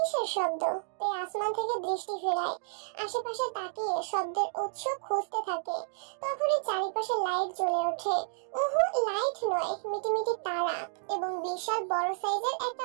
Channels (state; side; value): silent; left; digital silence